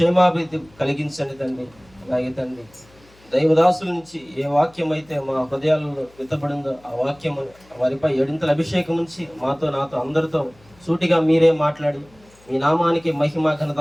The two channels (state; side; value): noise; left; hum, 29 dB below the sound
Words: కలిగించండి తండ్రి. అలాగే తండ్రి దైవదాసుల నుంచి ఏ వాక్యం అయితే మా హృదయాలలో విత్తబడిందో ఆ వాక్యం వారిపై ఏడింతల అభిషేకం ఉంచి నాతో అందరితో సూటిగా మీరే మాట్లాడి మీ నామానికి మహిమ ఘనత